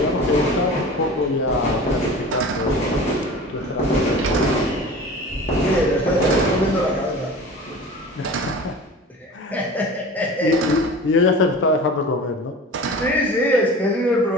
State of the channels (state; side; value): normal; both; correlation 0.37